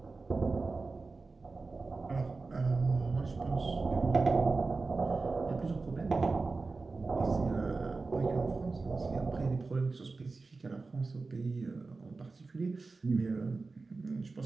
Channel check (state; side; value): quieter; left; 3.9 dB